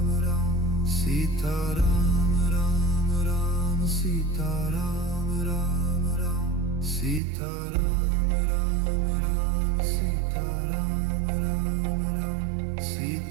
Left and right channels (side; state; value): left; drops out; at 7.2 s